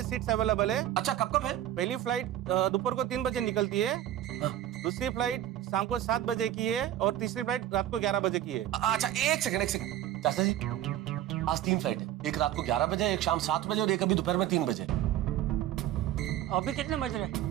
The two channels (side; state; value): left; quieter; 12.3 dB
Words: सीट्स अवेलेबल है। अच्छा, कब है? पहली फ्लाइट दोपहर को 3 बजे निकलती है, दूसरी फ्लाइट शाम को 7 बजे की है और तीसरी फ्लाइट रात को 11 बजे की है। अच्छा एक सेकंड चाचा जी, आज 3 फ्लाइट है, एक रात को 11 बजे, एक शाम 7 बजे और एक अभी दोपहर में 3 बजे। अभी कितने बज रहे?